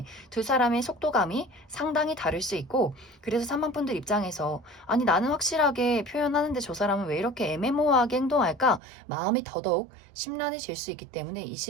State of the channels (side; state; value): left; drops out; at 8.8 s